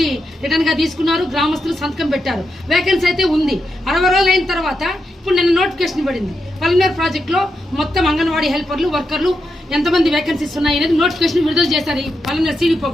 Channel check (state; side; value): normal; both; correlation 0.85